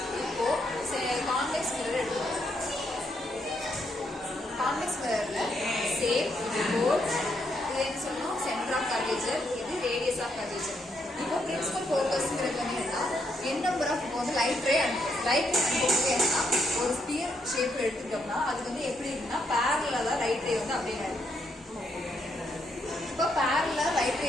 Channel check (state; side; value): normal; both; correlation 0.77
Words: இப்போ கான்வெக்ஸ் மிரர் எடுத்துக்கோங்க. கான்வெக்ஸ் மிரர்ல சேப், போல், இது என்ன சொல்லணும் சென்டர் ஆஃப் கர்வேச்சர், இது ரேடியஸ் ஆஃப் கர்வேச்சர். இப்போ பிரின்சிபல் ஃபோக்கஸ்ங்கிறது வந்து என்னன்னா என் நம்பர் ஆஃப் இப்போ வந்து லைட் ரே அனுப்பும்போது என்னன்னா ஒரு ஸ்பியர் ஷேப் எடுத்துட்டோம்னா அது வந்து எப்படி இருக்குன்னா பேரலா தான் லைட் ரே வந்து அப்படியே வருது. இப்போ பேரலா லைட் ரே